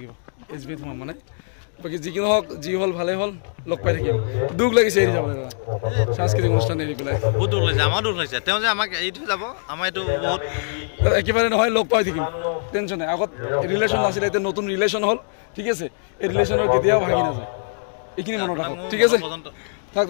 SBত সোমাম মানে বাকী যিকোনো হওক যি হ'ল ভালেই হ'ল লগ পাই থাকিম দুখ লাগিছে এৰি যাবলৈ দাদা সাংস্কৃতিক অনুষ্ঠান এৰি পেলাই বহুত দুখ লাগিছে আমাৰ দুখ লাগিছে তেওঁ যে আমাক এৰি থৈ যাব আমাৰ এইটো বহুত একেবাৰে নহয় লগ পাই থাকিম টেনশ্যন নাই আগত ৰিলেশ্যন নাছিলে এতিয়া নতুন ৰিলেশ্যন হ'ল ঠিক আছে এই ৰিলেশ্যনৰ কেতিয়াও ভাঙি নাযায় এইখিনি মনত ৰাখক ঠিক আছে থাক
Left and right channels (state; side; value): silent; right; digital silence